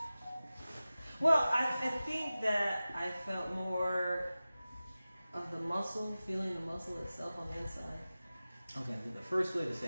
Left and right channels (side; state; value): both; inverted; correlation -0.96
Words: Well, I think that I felt more of the muscle, feeling the muscle itself on the inside. Okay, the first way or the